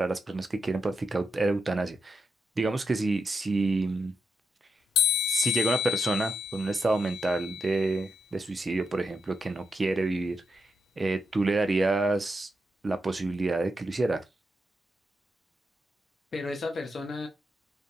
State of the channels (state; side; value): normal; both; correlation 0.84